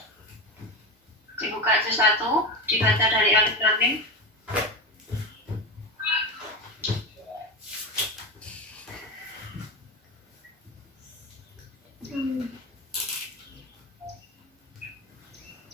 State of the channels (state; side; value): normal; both; correlation 0.20